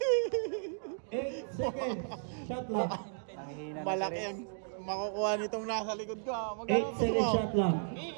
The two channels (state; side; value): silent; left; digital silence